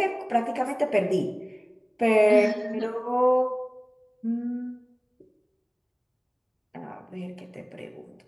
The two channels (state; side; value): identical; both; correlation 1.00